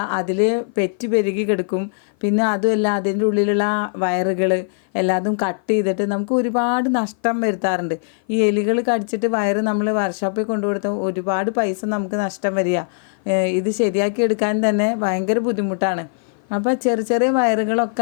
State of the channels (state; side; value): silent; right; 56 dB below the other